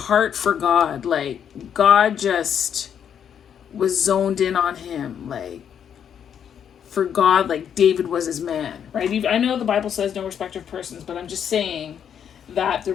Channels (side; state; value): right; quieter; 8.5 dB